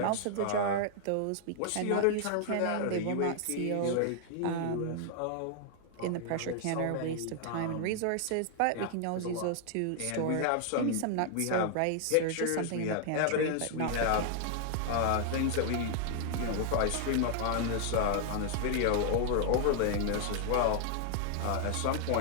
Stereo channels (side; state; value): both; different; correlation 0.00